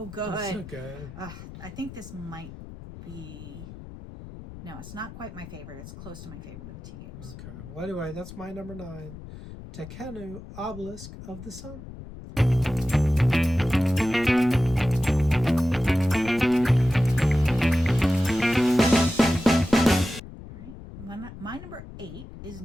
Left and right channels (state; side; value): noise; left; rumble, 14 dB below the sound